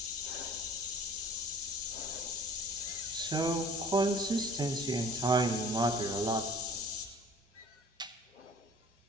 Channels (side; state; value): both; normal; correlation 0.48